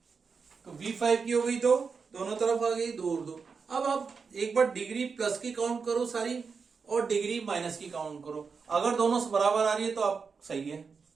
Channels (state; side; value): quieter; left; 5.3 dB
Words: तो V5 की हो गई 2, दोनों तरफ आ गई 2 और 2। अब आप एक बार डिग्री प्लस की काउंट करो सारी और डिग्री माइनस की काउंट करो, अगर दोनों से बराबर आ रही है तो आप सही है।